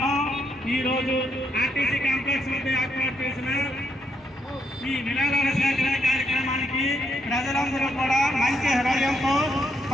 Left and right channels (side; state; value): both; normal; correlation 0.77